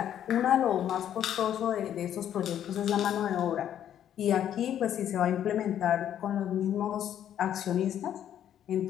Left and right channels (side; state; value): right; quieter; 10.4 dB